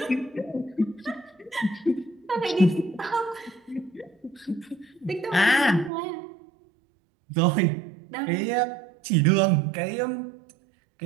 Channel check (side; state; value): left; drops out; at 5.9 s